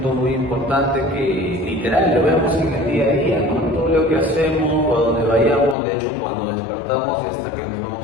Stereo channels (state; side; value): drops out; right; at 5.8 s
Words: muy importante que literal lo vemos en el día a día, ¿no? Todo lo que hacemos, a donde vayamos, de hecho cuando despertamos y hasta que nos